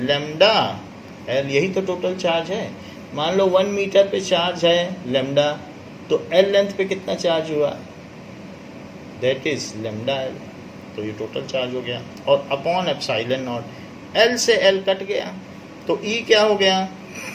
L, यही तो टोटल चार्ज है। मान लो 1 मीटर पे चार्ज है लैम्डा, तो L लेंथ पे कितना चार्ज हुआ, दैट इज लैम्डा L, तो ये टोटल चार्ज हो गया। और अपॉन एप्सिलॉन नॉट, L से L कट गया तो E क्या हो गया,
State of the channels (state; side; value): identical; both; correlation 1.00